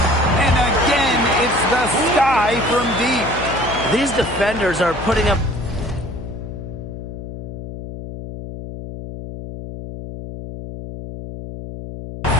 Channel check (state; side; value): noise; left; hum, 10 dB below the sound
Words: And again, it's the Sky from deep. These defenders are putting up